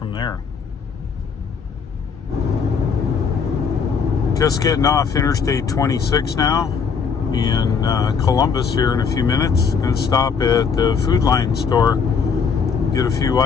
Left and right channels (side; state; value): right; quieter; 6.0 dB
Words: there. Just getting off Interstate 26 now in Columbus here in a few minutes. Going to stop at the Food Line store, get a few